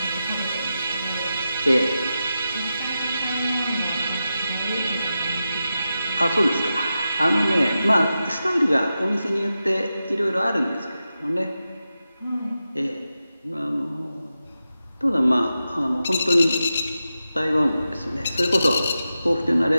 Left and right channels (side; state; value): both; inverted; correlation -0.91